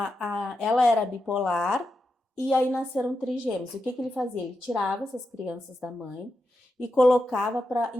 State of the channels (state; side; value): normal; both; correlation 0.87